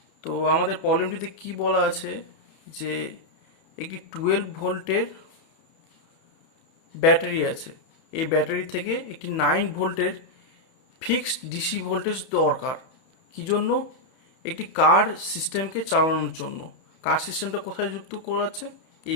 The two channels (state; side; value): late; right; 31 ms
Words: তো আমাদের প্রবলেমটিতে কি বলা আছে যে একটি 12 ভোল্টের battery আছে, এই ব্যাটারি থেকে একটি 9 ভোল্টের ফিক্সড ডিসি ভোল্টেজ দরকার। কি জন্য? একটি কার সিস্টেমকে চালানোর জন্য। কার সিস্টেমটা কোথায় যুক্ত করা আছে?